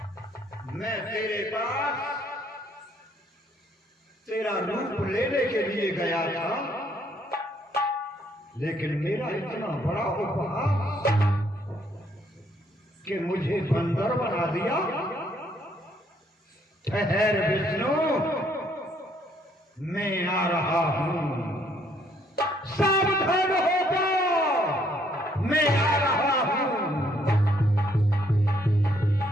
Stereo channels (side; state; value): both; normal; correlation 0.68